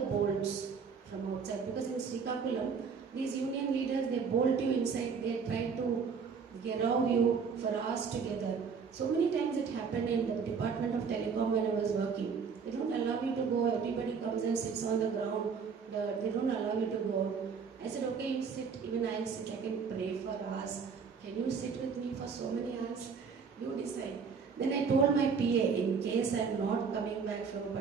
bolts from outside, because in Srikakulam, these union leaders, they bolt you inside, they try to gerau you for hours together. So many times it happened in the Department of Telecom when I was working. They don't allow you to go, everybody comes and sits on the ground, they don't allow you to go. I said, okay, you sit, even I'll sit, I can pray for hours. Can you sit with me for so many hours? You decide. Then I told my PA, in case I'm not coming back from a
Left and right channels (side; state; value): left; quieter; 5.8 dB